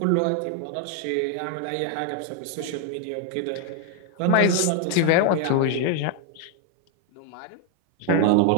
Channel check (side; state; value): both; different; correlation 0.00